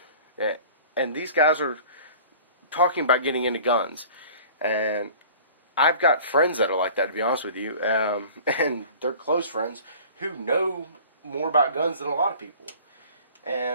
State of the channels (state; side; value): inverted; both; correlation -0.45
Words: And these guys are talking about getting into guns. And I've got friends that are like that, to be honest with you, and they're close friends who know more about guns than a lot of people.